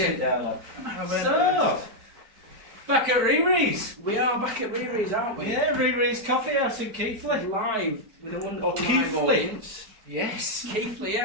down, lad. So, back at RiRi's. We are back at RiRi's, aren't we? Yeah, RiRi's Coffee House in Keighley. Live with a wonderful live Keighley. audience. Yes. Keighley,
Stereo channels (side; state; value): left; late; 4.5 ms